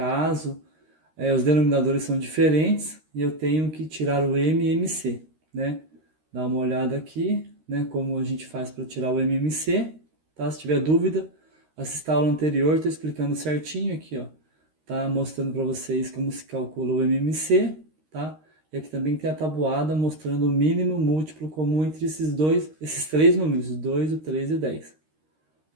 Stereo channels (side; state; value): left; late; 13 ms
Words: os denominadores são diferentes e eu tenho que tirar o M e MC, né? Dá uma olhada aqui, né? Como a gente faz para tirar o M e MC, tá? Se tiver dúvida, assista a aula anterior, estou explicando certinho aqui, ó. Tá mostrando para vocês como se calcula o MMC, tá? E aqui também tem a tabuada mostrando o mínimo múltiplo comum entre esses três números, o 2, o 3 e o 10.